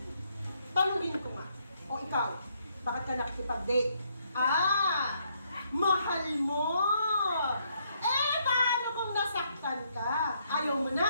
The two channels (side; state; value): both; inverted; correlation -0.73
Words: tanungin ko nga. O ikaw, bakit ka nakikipag-date? Ah, mahal mo! Eh, paano kung nasaktan ka? Ayaw mo